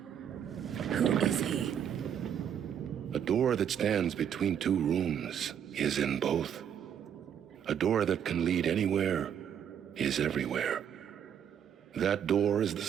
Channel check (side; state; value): left; quieter; 8.8 dB